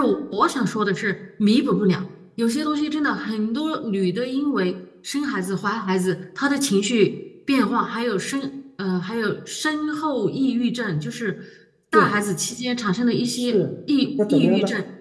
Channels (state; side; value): identical; both; correlation 1.00